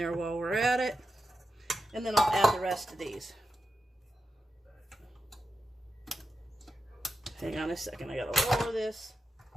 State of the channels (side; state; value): both; normal; correlation 0.90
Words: while we're at it. And then I'll add the rest of these. Hang on a second, I gotta lower this.